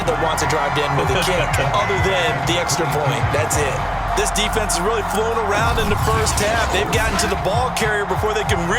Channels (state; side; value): identical; both; correlation 1.00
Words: that wants to drive to end with a kick, other than the extra point. That's it. This defense has really flown around in the first half. They've gotten to the ball carrier before they can